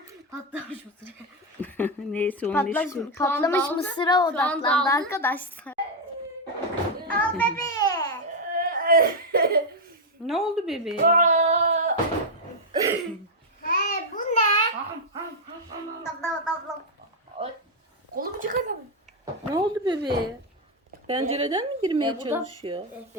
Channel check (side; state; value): both; normal; correlation 0.02